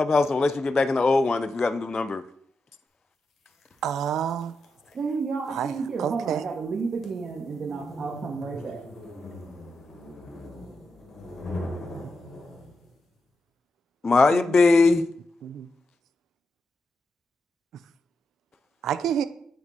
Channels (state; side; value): normal; both; correlation 0.86